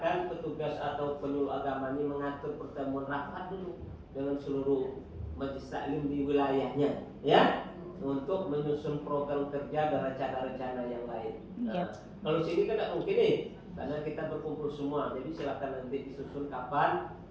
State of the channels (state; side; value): identical; both; correlation 1.00